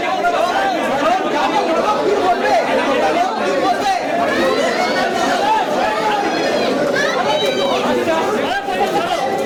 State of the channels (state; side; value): identical; both; correlation 1.00